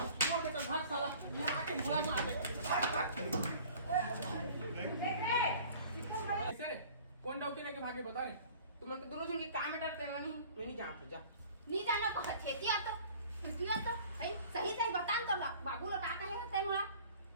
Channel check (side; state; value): both; inverted; correlation -0.48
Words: के तो भाग साला ये आके मुला मार दे ऐसे कौन डॉक्टर लेके भागे बता रे तुम उनके दोनों जन के काम में डरते नहीं मैं नहीं जानते जा नी जानो पछेतिया तो है सही बता तो बाबू ला का कहे हस्ते मोला